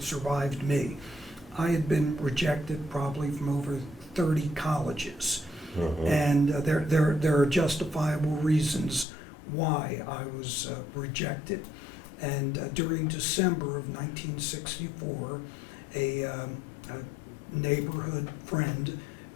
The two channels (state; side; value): drops out; right; at 9.1 s